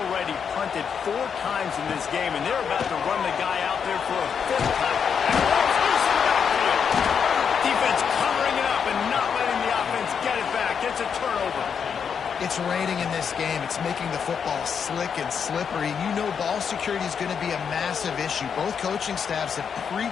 punted 4 times in this game, and they're about to run the guy out there for a 5th time. And it's loose in the backfield. Defense covering it up and not letting the offense get it back. It's a turnover. It's raining in this game. It's making the football slick and slippery. You know ball security is going to be a massive issue. Both coaching staffs have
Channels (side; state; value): right; quieter; 6.9 dB